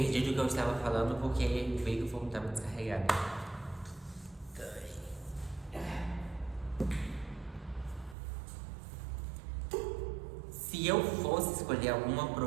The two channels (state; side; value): drops out; left; at 8.2 s